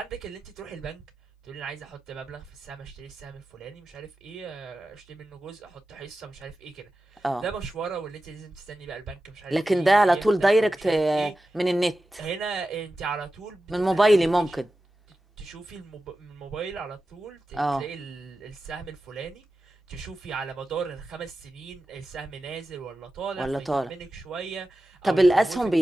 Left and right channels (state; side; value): normal; both; correlation 0.93